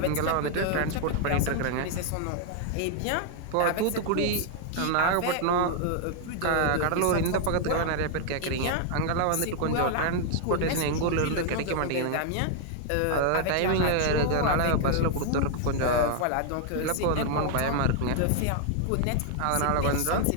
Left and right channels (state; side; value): different; both; correlation 0.00